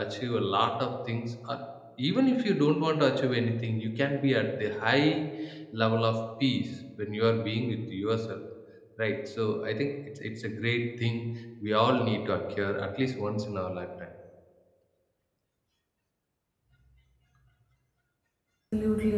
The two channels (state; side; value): identical; both; correlation 1.00